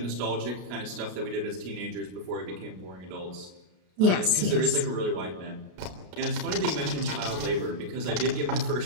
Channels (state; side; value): late; left; 33 ms